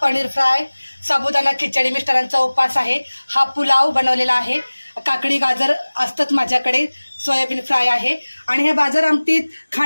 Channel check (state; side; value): inverted; both; correlation -1.00